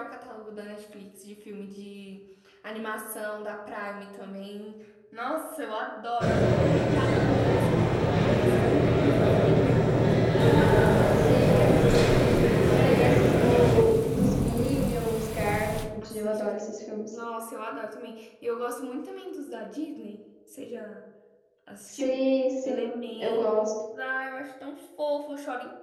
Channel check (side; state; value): both; identical; correlation 1.00